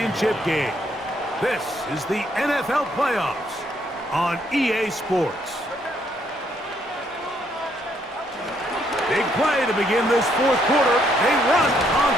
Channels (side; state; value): both; normal; correlation 0.71